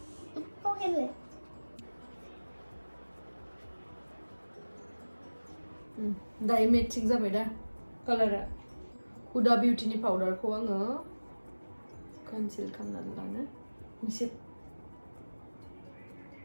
खावखेनलाय दायो मेचिं जाबाय दा कालारा हुदा बिउटिनि पाउडारखौ आङो कनसिल खालामनानै लानो एसे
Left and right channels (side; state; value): both; inverted; correlation -1.00